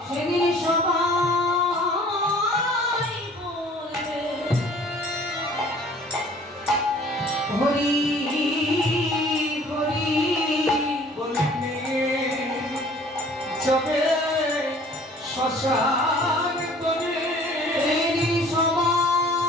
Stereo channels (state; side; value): normal; both; correlation 0.52